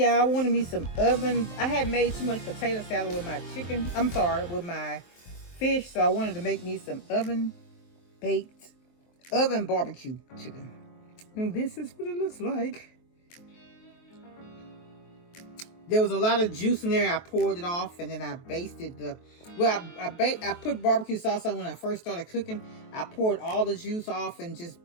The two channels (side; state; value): right; late; 23 ms